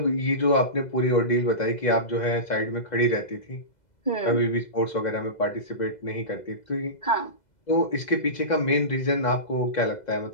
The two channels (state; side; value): late; right; 2.0 ms